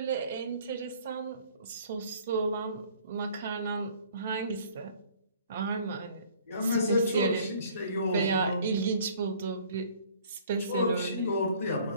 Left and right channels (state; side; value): inverted; both; correlation -0.54